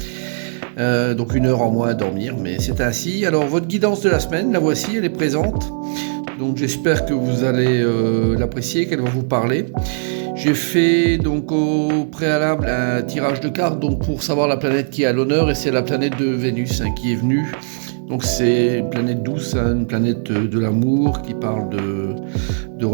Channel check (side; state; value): left; silent; 67 dB below the other